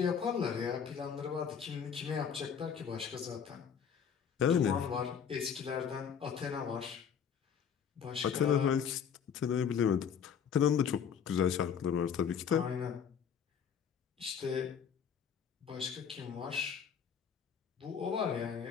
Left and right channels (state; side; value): quieter; right; 7.4 dB